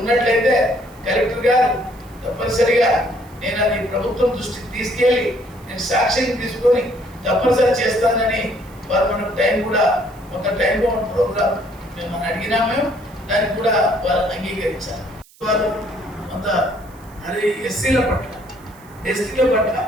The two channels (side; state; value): right; noise; hiss, 27 dB below the sound